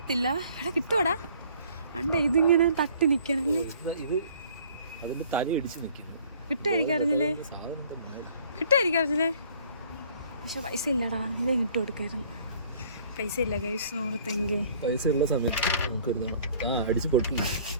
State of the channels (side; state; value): both; inverted; correlation -0.55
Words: ഇവിടെ കിട്ടുവാടാ. അണ്ട ഇതിങ്ങനെ തട്ടി നിക്കണല്ലേ. കിട്ടായിരിക്കാറില്ലേ? കിട്ടായിരിക്കാറില്ലേ? പക്ഷെ പൈസ ഇല്ലടാ. ഇല്ലേ കിട്ടു കൊടുക്കായിരുന്നു. പൈസ ഇല്ല ഗൈസ്. 100 തെങ്ങ് പൈസ ഉള്ള സമയത്ത് നമുക്ക് എടുക്കണം. അടിച്ചു പൊട്ടില്ല,